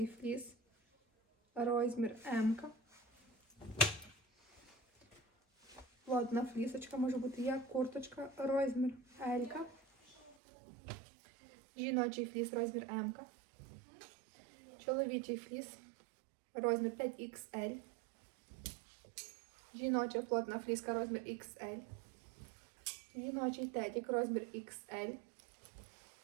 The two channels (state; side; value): drops out; left; at 10.4 s